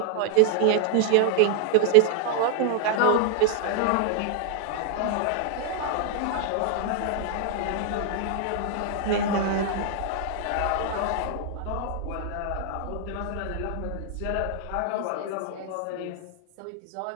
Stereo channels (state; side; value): different; both; correlation 0.00